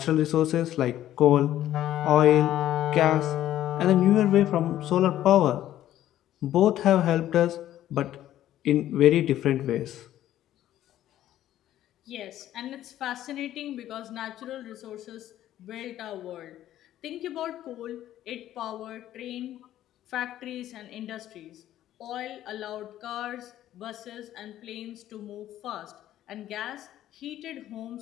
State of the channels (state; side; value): quieter; right; 12.7 dB